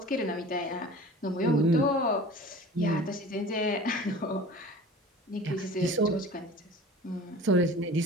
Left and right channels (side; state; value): both; normal; correlation 0.41